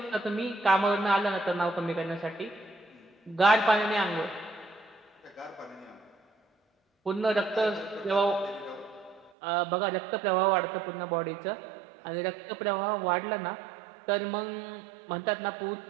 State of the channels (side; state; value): left; drops out; at 9.3 s